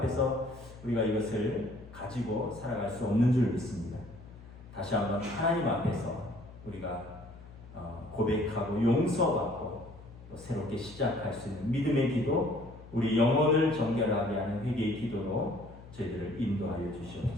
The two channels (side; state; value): left; noise; hum, 19 dB below the sound